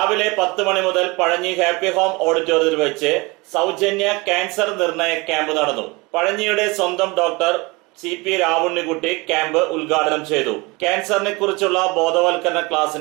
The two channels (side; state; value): left; quieter; 25.4 dB